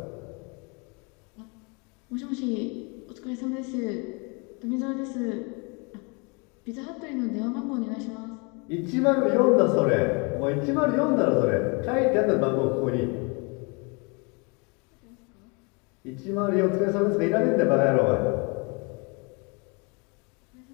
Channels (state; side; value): quieter; right; 31.5 dB